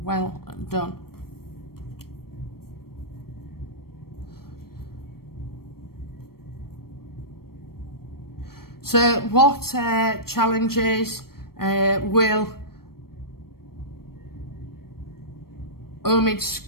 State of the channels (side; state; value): right; late; 0.94 ms